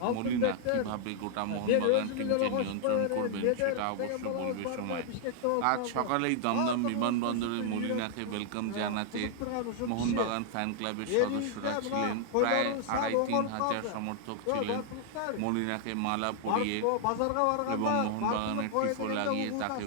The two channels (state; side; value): different; both; correlation -0.01